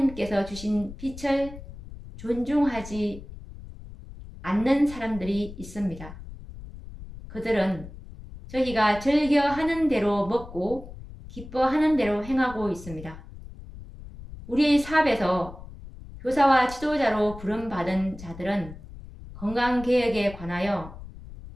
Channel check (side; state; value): left; noise; rumble, 15 dB below the sound